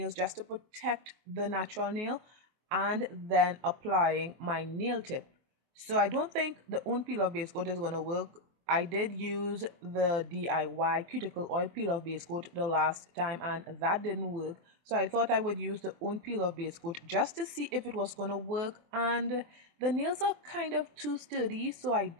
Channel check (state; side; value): late; left; 24 ms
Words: just to protect the natural nail, and then applying my nail tip. So I don't think the Nude peel off base coat is going to work. I did use the DIY cuticle oil peel off base coat the last time and that didn't work. So I thought I would use the Nude peel off base coat just to see if it was going to work, and the nails are kind of too sturdy, so I